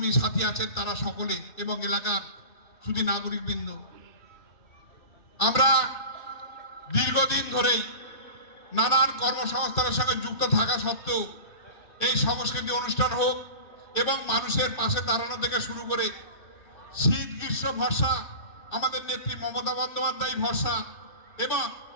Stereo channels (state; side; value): late; right; 2.6 ms